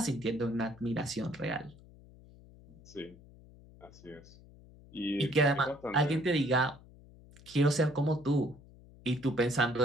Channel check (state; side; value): noise; left; hum, 22 dB below the sound